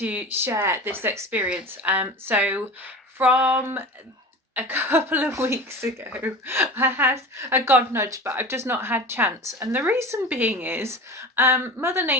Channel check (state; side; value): normal; both; correlation 0.33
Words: share this experience. So from a couple of weeks ago I had a god nudge, but I've just not had chance, and the reason being is Mother